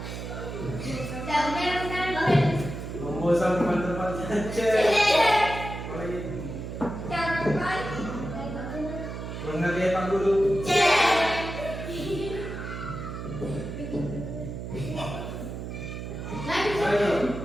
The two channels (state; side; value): noise; right; hum, 7 dB below the sound